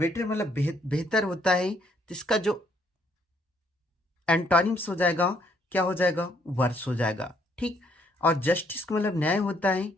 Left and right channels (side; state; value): both; normal; correlation 0.68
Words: मतलब बेहतर होता है, तो इसका जो एंटोनिम्स हो जाएगा क्या हो जाएगा, वर्स हो जाएगा, ठीक। और जस्टिस का मतलब न्याय होता है,